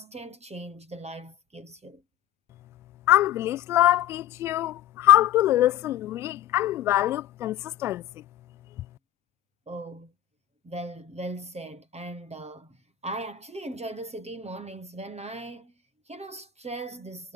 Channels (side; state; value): right; quieter; 11.5 dB